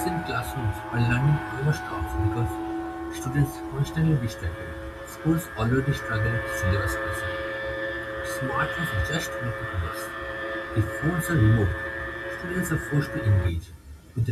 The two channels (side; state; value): both; identical; correlation 1.00